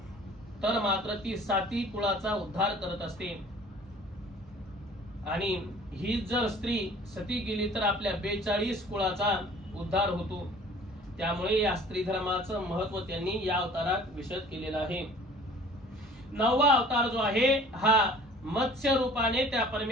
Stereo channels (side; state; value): both; normal; correlation 0.49